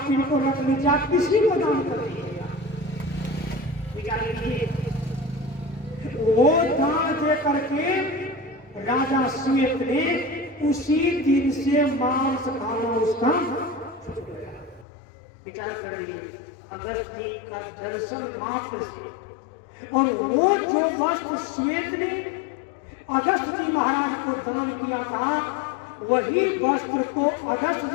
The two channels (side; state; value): right; drops out; at 14.9 s